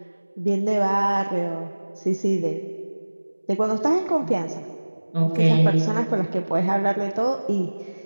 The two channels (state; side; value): inverted; both; correlation -1.00